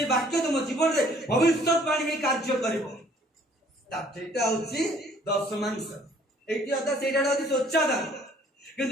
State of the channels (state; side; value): normal; both; correlation 0.58